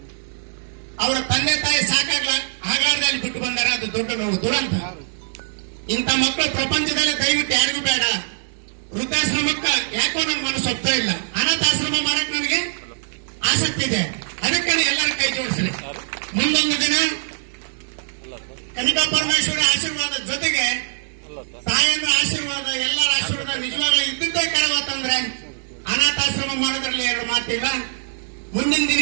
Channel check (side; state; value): left; silent; digital silence